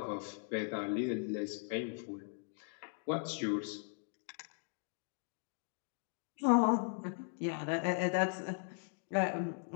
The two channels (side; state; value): right; silent; 52 dB below the other